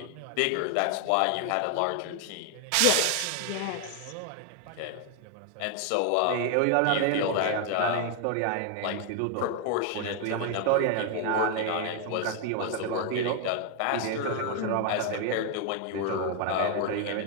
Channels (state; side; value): different; both; correlation 0.00